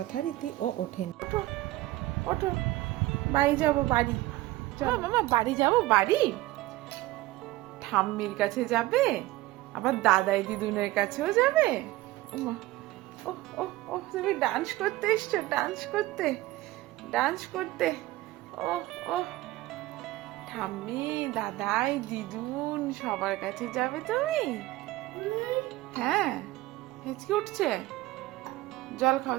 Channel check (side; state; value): left; quieter; 17.8 dB